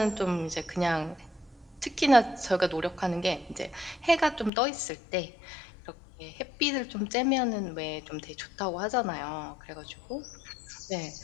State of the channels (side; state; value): right; drops out; at 4.5 s